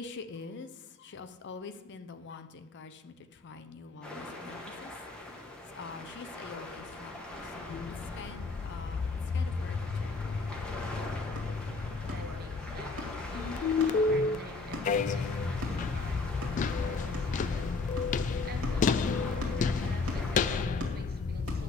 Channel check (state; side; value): quieter; right; 3.9 dB